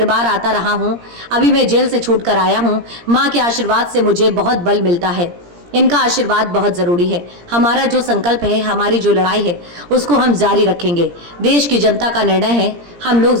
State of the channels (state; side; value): late; left; 17 ms